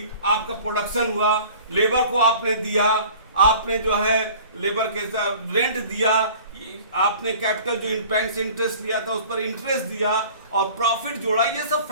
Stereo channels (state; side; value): inverted; both; correlation -0.45